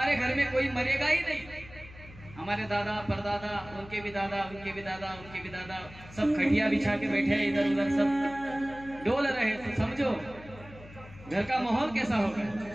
घर में कोई मरेगा ही नहीं, हमारे दादा परदादा, उनके भी दादा, उनके भी दादा, उनके भी दादा, सब खटिया बिछा के बैठे इधर उधर सब डोल रहे, तो समझो घर का माहौल कैसा होगा।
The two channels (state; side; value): noise; left; hum, 19 dB below the sound